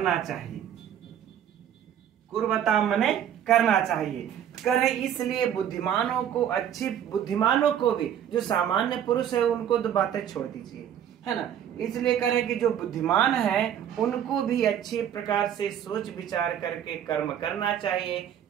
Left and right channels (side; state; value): left; quieter; 9.7 dB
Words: चाहिए, कुर्वता मने करना चाहिए। करे इसलिए बुद्धिमानों को, अच्छी बुद्धिमानों को भी, जो सामान्य पुरुष है उनको तो बातें छोड़ दीजिए, है ना। इसलिए करें कि जो बुद्धिमान है उनको भी अच्छी प्रकार से सोच विचार करके कर्म करना चाहिए,